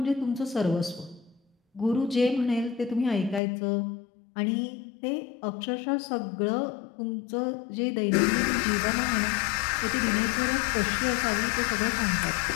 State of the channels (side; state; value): right; drops out; at 3.4 s